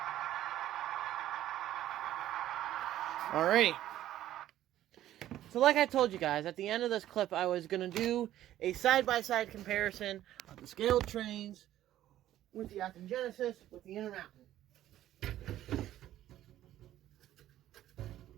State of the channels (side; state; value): left; quieter; 13.0 dB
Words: Alrighty. So like I told you guys, at the end of this clip, I was going to do a side-by-side comparison of the Scaletrains with the Acton Genesis with the Intermountain.